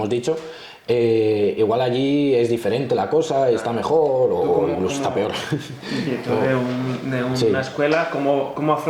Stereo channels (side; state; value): both; identical; correlation 1.00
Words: dicho, igual allí es diferente la cosa, está mejor o incluso está peor. Y tú de una escuela, ¿cómo